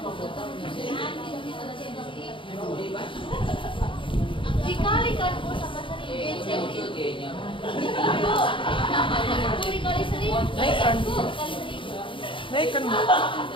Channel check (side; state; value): right; late; 0.25 ms